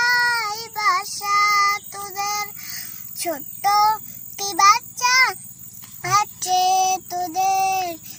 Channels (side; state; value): both; identical; correlation 1.00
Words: বাসা তোদের, ছোট্ট কি বাচ্চা আছে তোদের,